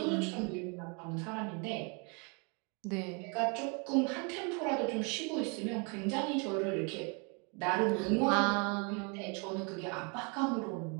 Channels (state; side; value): quieter; left; 33.8 dB